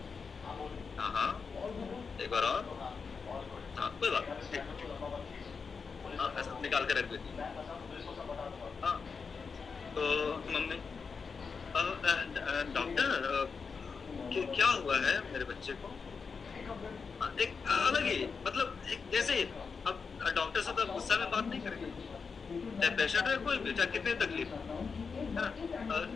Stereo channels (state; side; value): quieter; right; 5.3 dB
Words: हाँ हाँ एक बार और, हाँ कोई बात नहीं, ठीक। हाँ ऐसा निकाल के रख दीजिए। हाँ तो मम्मी, डॉक्टर क्या हुआ है मेरे बच्चे को। एक अलग ही मतलब, एक जैसे अब डॉक्टर से तो गुस्सा में बात नहीं करेंगे, चाहे पेशेंट है कोई भी, चाहे कितनी तकलीफ है ना।